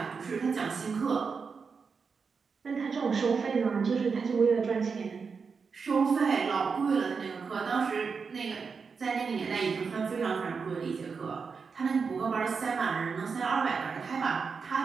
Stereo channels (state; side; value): quieter; left; 5.3 dB